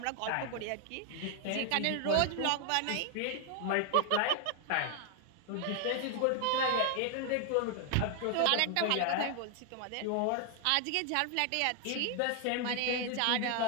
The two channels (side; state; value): both; different; correlation 0.00